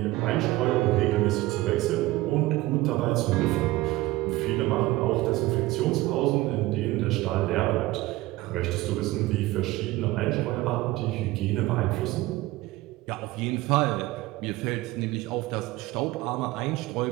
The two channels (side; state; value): left; quieter; 18.5 dB